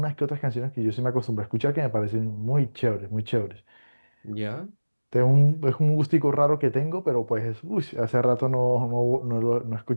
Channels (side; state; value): both; inverted; correlation -1.00